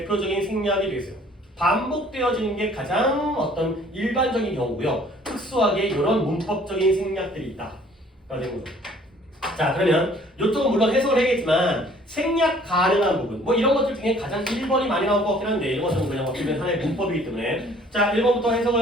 생략이 되겠어요. 반복되어지는 게 가장 어떤 일반적인 경우고요. 특수하게 이런 문법적인 생략들이 있다. 라는 거죠. 자 그러면 이쪽은 물론 해석을 해야겠지만 생략 가능한 부분 뭐 이런 것들 중에 가장 1번이 많이 나올 것 같긴 한데 이런 것은 그냥 어떻게 보면 하나의 문법이기 때문에 자 1번부터 해석을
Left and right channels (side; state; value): both; normal; correlation 0.56